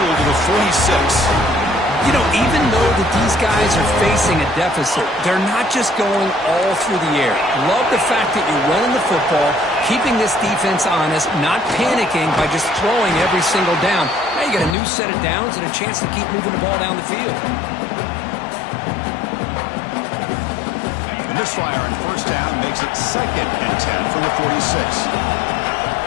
to the 46. You know, even though that these guys are facing a deficit, they're not just going all through the air. Love the fact that you're running the football, keeping this defense honest, not panicking by just throwing every single down. Now you got a new set of downs and a chance to keep moving the ball down the field. The misfire on 1st down makes it 2nd and 10 from the 46.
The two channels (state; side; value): drops out; right; at 14.8 s